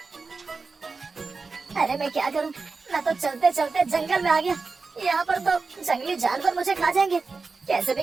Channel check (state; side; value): quieter; left; 4.3 dB